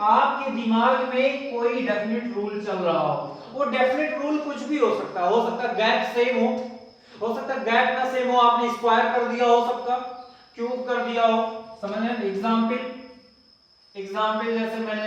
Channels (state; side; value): identical; both; correlation 1.00